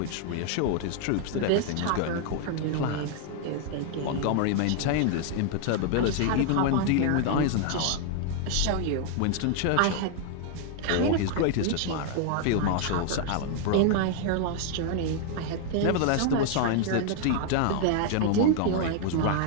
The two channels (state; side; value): different; both; correlation 0.00